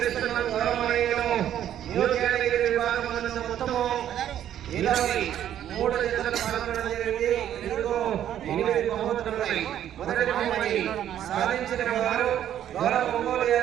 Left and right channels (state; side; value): quieter; left; 10.9 dB